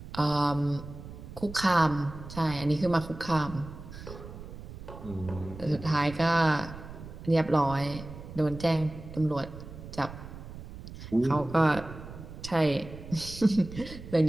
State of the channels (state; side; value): noise; right; rumble, 13 dB below the sound